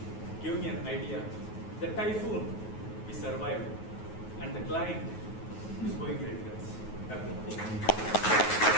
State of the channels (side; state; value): right; late; 9.4 ms